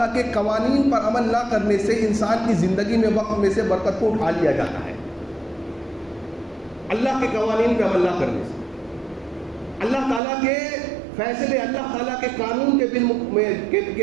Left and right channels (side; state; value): left; drops out; at 10.2 s